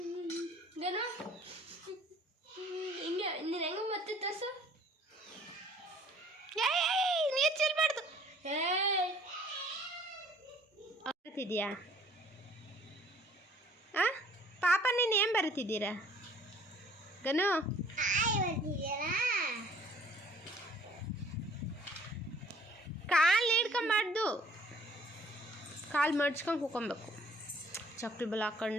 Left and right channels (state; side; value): normal; both; correlation 0.56